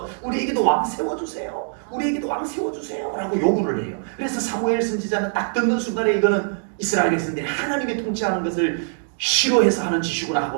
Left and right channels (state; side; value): silent; left; digital silence